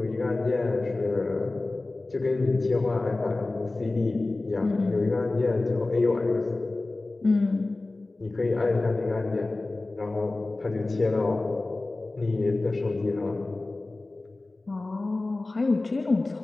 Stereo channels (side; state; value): right; quieter; 3.1 dB